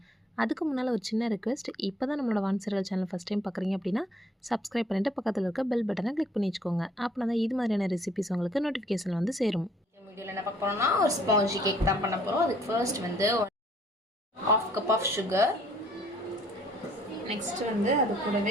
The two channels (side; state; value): both; normal; correlation 0.61